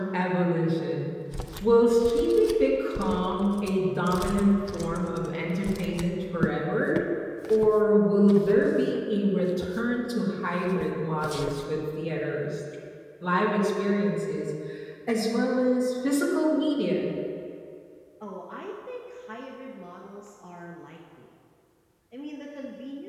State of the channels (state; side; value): identical; both; correlation 1.00